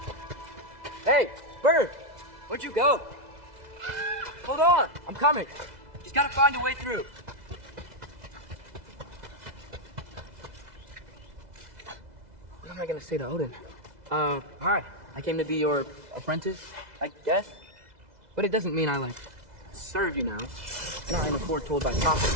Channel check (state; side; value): late; left; 2.0 ms